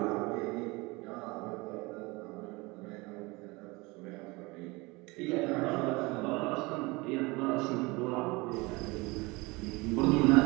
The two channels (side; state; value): left; quieter; 24.2 dB